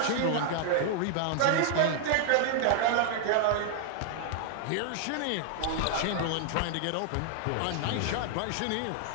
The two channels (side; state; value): both; different; correlation -0.01